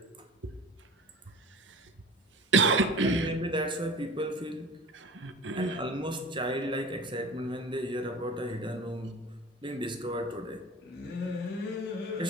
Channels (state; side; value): normal; both; correlation 0.39